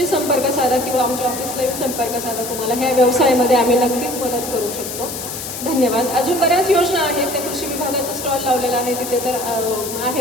संपर्क साधा किंवा आमच्या ऑफिसला येऊन संपर्क साधा. तुम्हाला ह्या व्यवसायामध्ये आम्ही नक्कीच मदत करू शकतो. धन्यवाद. अजून बऱ्याच योजना आहेत, त्या कृषी विभागाचा स्टॉल लावलेला आहे तिथे तर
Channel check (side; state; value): left; noise; hiss, 7 dB below the sound